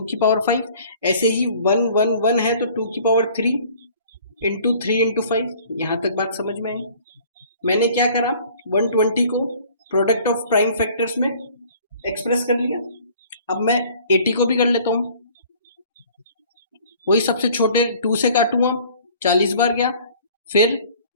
की पावर 5। ऐसे ही 1 1 1 है, तो 2 की पावर 3 इंटू 3 इंटू 5। यहाँ तक बात समझ में आई? मैंने क्या करा, 120 को प्रोडक्ट ऑफ प्राइम फैक्टर्स में एक्सप्रेस कर लिया। अब मैं 80 को भी कर लेता हूँ, वही सबसे छोटे 2 से काटूंगा, 40 बार गया, फिर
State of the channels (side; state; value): both; inverted; correlation -0.52